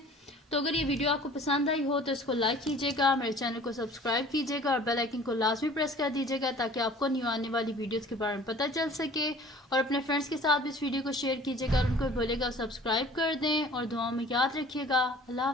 तो अगर ये वीडियो आपको पसंद आई हो तो इसको लाइक कीजिएगा, मेरे चैनल को सब्सक्राइब कीजिएगा और बेल आइकन को लाजमी प्रेस कर दीजिएगा ताकि आपको न्यू आने वाली वीडियोस के बारे में पता चल सके। और अपने फ्रेंड्स के साथ भी इस वीडियो को शेयर कीजिएगा और उनको बोलेगा सब्सक्राइब कर दें। और दुआओं में याद रखिएगा। अल्लाह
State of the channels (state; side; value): normal; both; correlation 0.48